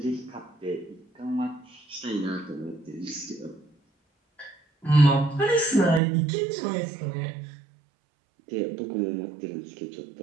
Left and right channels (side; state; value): left; drops out; at 6.0 s